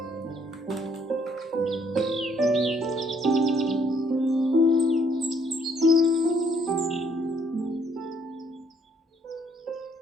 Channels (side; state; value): both; normal; correlation 0.66